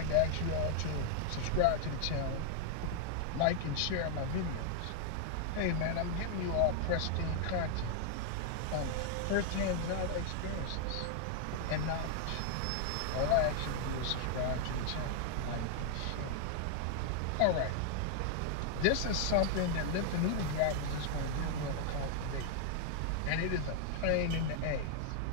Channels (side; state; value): both; different; correlation 0.00